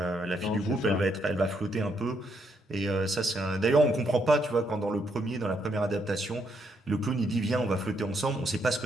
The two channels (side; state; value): both; normal; correlation 0.75